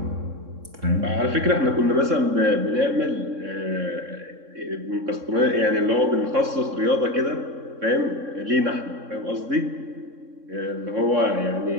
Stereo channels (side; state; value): left; late; 3.6 ms